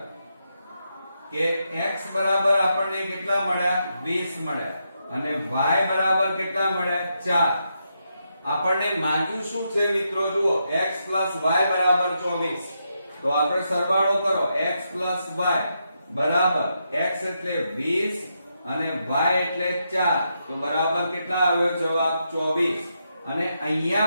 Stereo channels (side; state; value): both; inverted; correlation -0.83